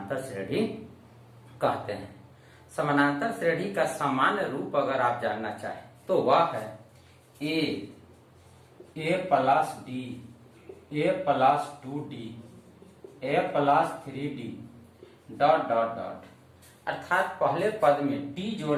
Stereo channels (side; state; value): both; identical; correlation 1.00